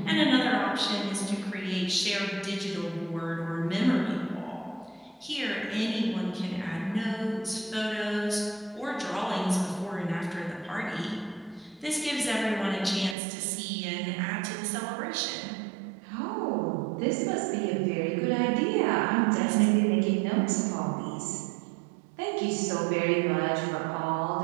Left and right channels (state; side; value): drops out; left; at 13.2 s